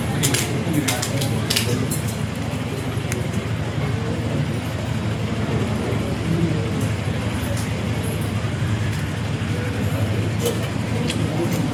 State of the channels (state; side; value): identical; both; correlation 1.00